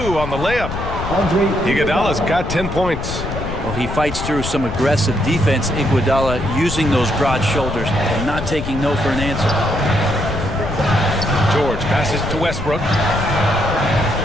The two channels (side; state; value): left; noise; rumble, 6 dB below the sound